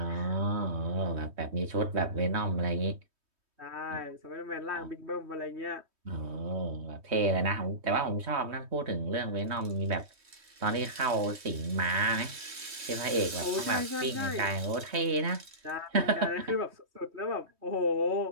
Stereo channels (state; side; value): late; left; 3.2 ms